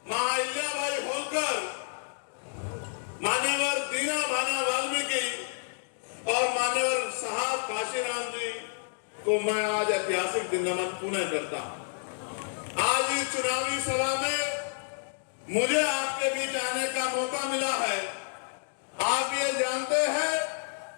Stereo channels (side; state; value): right; silent; digital silence